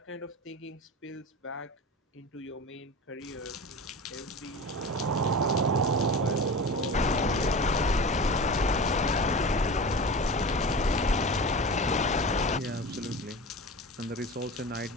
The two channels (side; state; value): both; normal; correlation 0.32